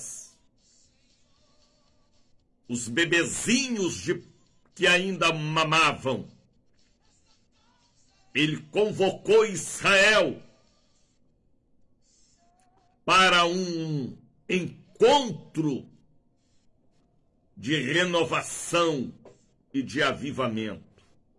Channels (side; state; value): both; identical; correlation 1.00